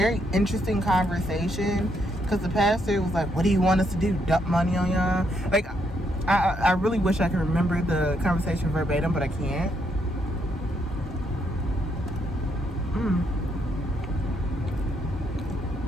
interesting conversation, because the pastor was like, what do you want us to do? Dump money on y'all? Like, I really wish I could remember the conversation verbatim, but I can't.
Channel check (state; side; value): normal; both; correlation 0.75